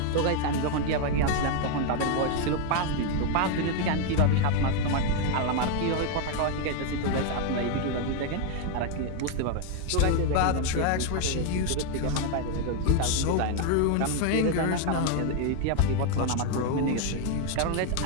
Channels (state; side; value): different; both; correlation 0.01